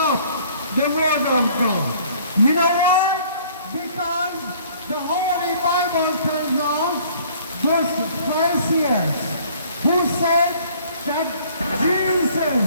the word of God. You know why? Because the Holy Bible tells us those Pharisees who said that Jesus,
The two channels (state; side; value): inverted; both; correlation -0.56